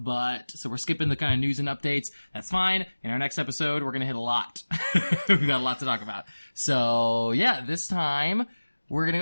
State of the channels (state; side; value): inverted; both; correlation -1.00